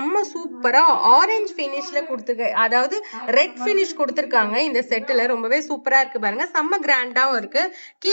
சூப்பரா ஆரஞ்சு பினிஷ்ல கொடுத்துருக்கு. அதாவது ரெட் பினிஷ் கொடுத்துருக்காங்க. இந்த செட்டுல ரொம்பவே சூப்பரா இருக்கு பாருங்க. செம்ம கிராண்டாவும் இருக்கு.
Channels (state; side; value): inverted; both; correlation -1.00